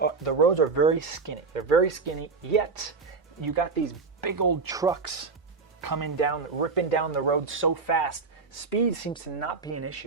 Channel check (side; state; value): left; quieter; 4.5 dB